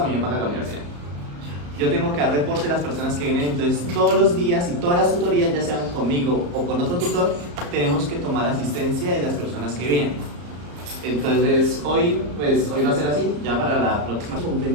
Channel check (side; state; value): left; late; 34 ms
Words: A mí me paga la universidad. Yo tengo que dar reporte de las personas que vienen, entonces todos los días y todas las tutorías, ya sean conmigo o con otro tutor, tenemos que tomar asistencia de las personas que vienen. Entonces hoy va a ser así, ya para la próxima.